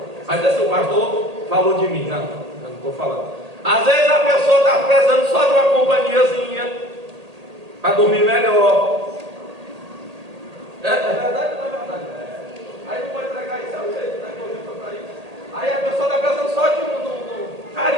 Mas esse o pastor falou de mim, não, eu não estou falando. Às vezes a pessoa está precisando só de uma companhiazinha para dormir melhor. É verdade ou não é verdade? Aí não pode pregar isso, é o jeito, né? Que eu digo para isso. Aí a pessoa está precisando só de um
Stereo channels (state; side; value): late; left; 1.8 ms